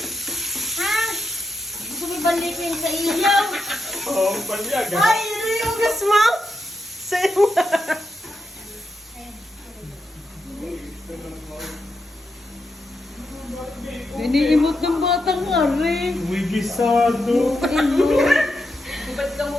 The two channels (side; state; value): both; normal; correlation 0.85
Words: Ha? Gusto mo balikin sa ilaw? Oo, palyag. Ay, yung gas mo? Sa'yo. Iniimot ng batang nga rin. Uy, gisado. Ba't ka